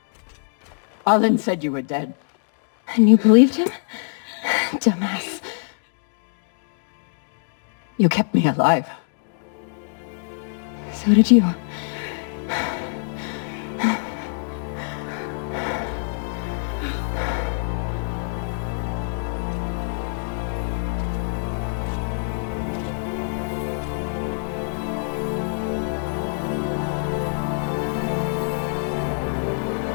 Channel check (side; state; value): right; silent; digital silence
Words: Arlen said you were dead. And you believed him? Dumbass. You kept me alive. So did you.